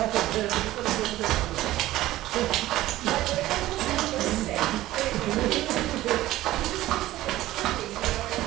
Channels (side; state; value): left; quieter; 15.7 dB